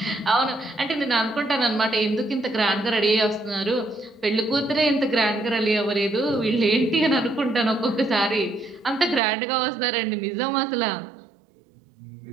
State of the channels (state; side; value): drops out; left; at 9.2 s